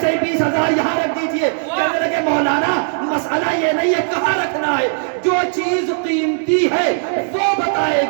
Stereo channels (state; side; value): silent; left; digital silence